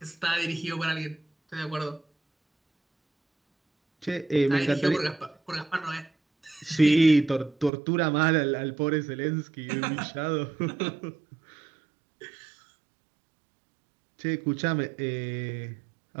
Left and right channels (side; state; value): left; drops out; at 7.7 s